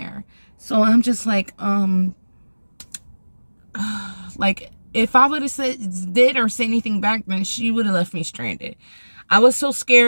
So I'm just like, like, if I would have did or said anything back then, she would have left me stranded. I was so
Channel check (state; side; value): inverted; both; correlation -1.00